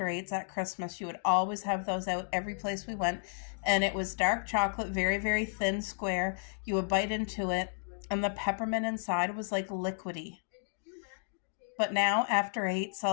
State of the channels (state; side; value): silent; right; digital silence